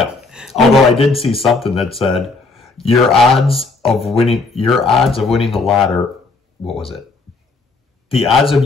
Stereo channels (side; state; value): right; quieter; 3.8 dB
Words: Although I did see something that said, your odds of winning the lottery, what was it? the odds of